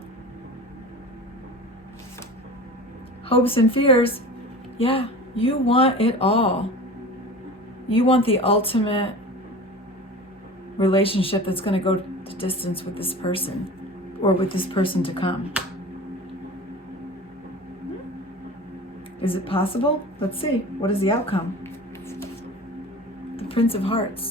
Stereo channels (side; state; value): both; normal; correlation 0.36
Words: Hopes and fears, yeah, you want it all. You want the ultimate relationship that's going to go the distance with this person, or with this person to come. Is it possible? Let's see. What is the outcome? The Prince of